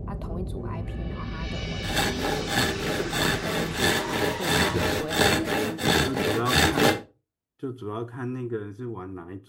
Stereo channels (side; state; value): both; identical; correlation 1.00